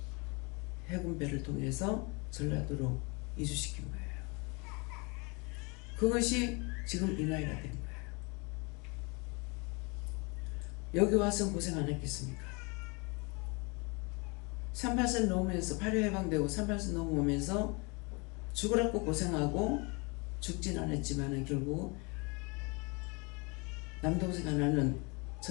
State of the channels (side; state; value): right; quieter; 29.9 dB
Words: 해군배를 통해서 전라도로 이주시킨 거예요. 그것이 지금 이 나이가 된 거예요. 여기 와서 고생 안 했겠습니까? 38선 넘으면서 8.25 해방되고 38선 넘으면서 죽으라고 고생하고 죽진 않았지만 결국 남동생 하나는